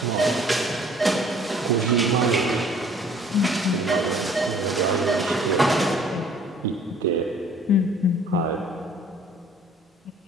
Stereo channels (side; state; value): both; normal; correlation 0.55